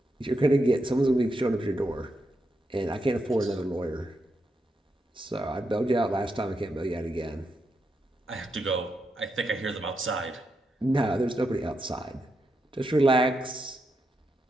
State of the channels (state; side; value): normal; both; correlation 0.84